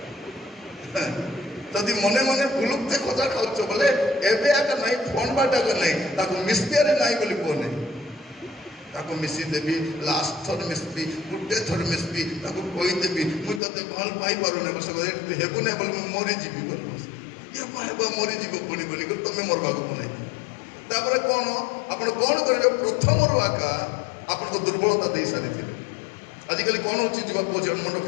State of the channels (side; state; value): right; drops out; at 13.6 s